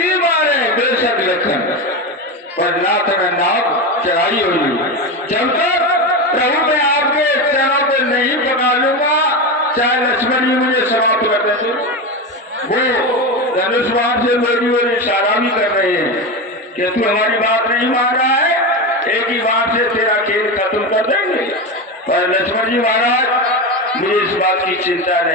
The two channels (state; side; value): normal; both; correlation 0.19